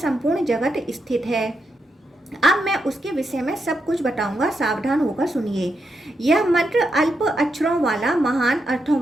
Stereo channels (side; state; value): both; normal; correlation 0.84